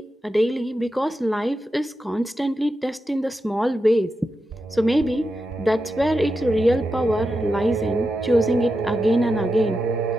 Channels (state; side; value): normal; both; correlation 0.88